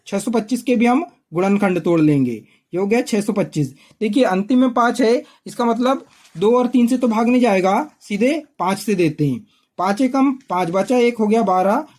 625 के भी हम गुणनखंड तोड़ लेंगे, ये हो गया 625। देखिए, अंतिम में 5 है, इसका मतलब 2 और 3 से तो भाग नहीं जाएगा, सीधे 5 से देते हैं। 5 एकम 5, बचा 1, हो गया 12,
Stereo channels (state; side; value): identical; both; correlation 1.00